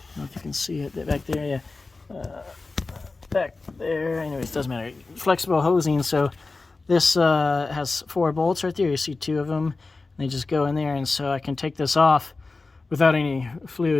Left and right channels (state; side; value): quieter; right; 3.7 dB